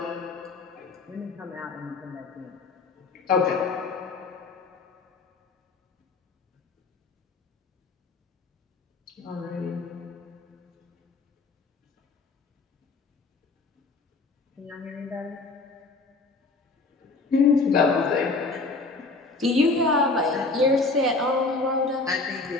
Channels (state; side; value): quieter; right; 3.7 dB